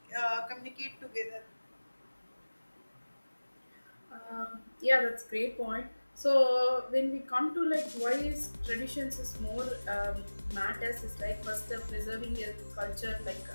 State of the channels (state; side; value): inverted; both; correlation -1.00